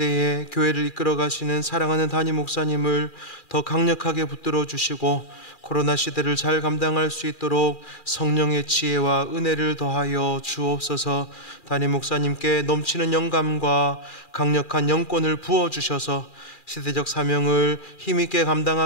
교회를 이끌어 가시는 사랑하는 담임 목사님을 더 강력하게 붙들어 주시고 코로나 시대를 잘 감당할 수 있도록 성령의 지혜와 은혜를 더하여 주옵소서. 담임 목사님께 넘치는 영감과 강력한 영권을 부어주셔서 시대적 사명을 힘있게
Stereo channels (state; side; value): late; right; 2.4 ms